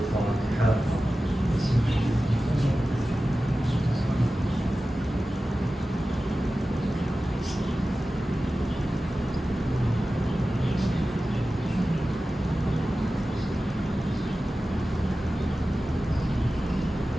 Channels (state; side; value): normal; both; correlation 0.95